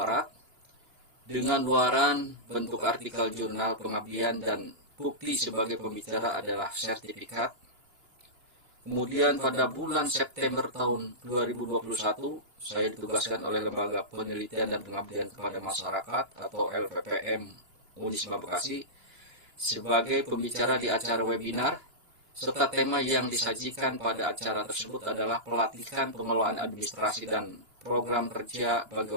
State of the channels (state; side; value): late; left; 2.9 ms